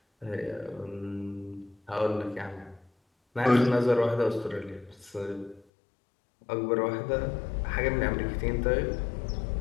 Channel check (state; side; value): drops out; right; at 5.7 s